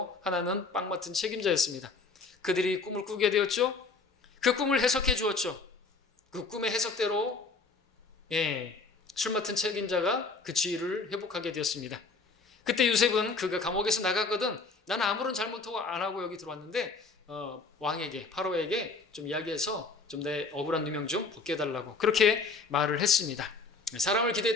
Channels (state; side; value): quieter; right; 4.1 dB